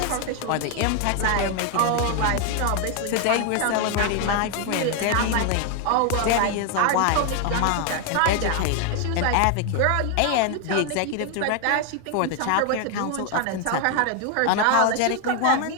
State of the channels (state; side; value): different; both; correlation 0.01